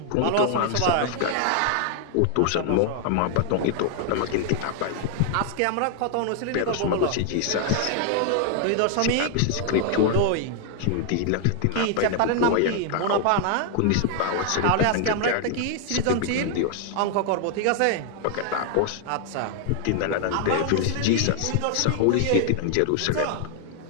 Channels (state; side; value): different; both; correlation 0.00